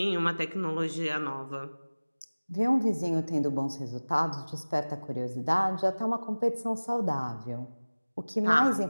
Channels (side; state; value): both; inverted; correlation -1.00